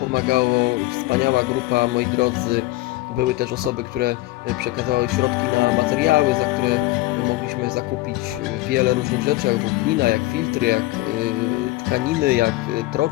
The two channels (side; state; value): right; quieter; 18.6 dB